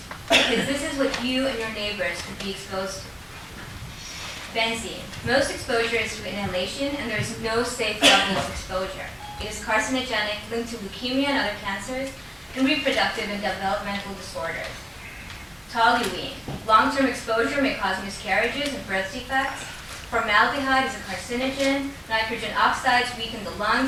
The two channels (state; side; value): identical; both; correlation 1.00